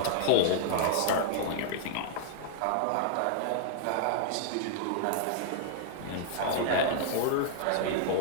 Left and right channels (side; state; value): both; different; correlation -0.01